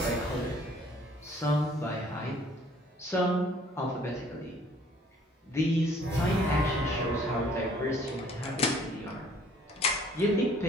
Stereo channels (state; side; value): normal; both; correlation 0.57